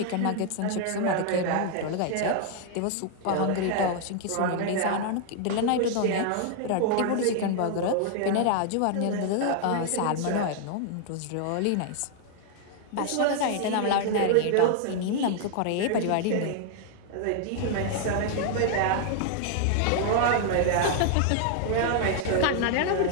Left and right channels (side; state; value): both; different; correlation 0.00